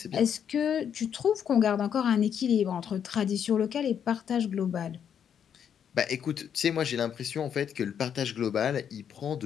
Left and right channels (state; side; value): quieter; right; 8.4 dB